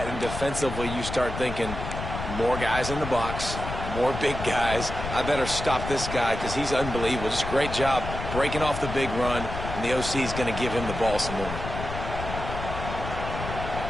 and defensively you start thinking more guys in the box, more big guys. I better stop this guy because he's unbelievable. Just a great job breaking off the big run, and the OC is going to give him the ball some more.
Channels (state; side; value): noise; left; rumble, 6 dB below the sound